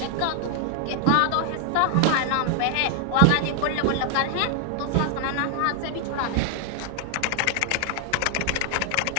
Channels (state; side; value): different; both; correlation 0.00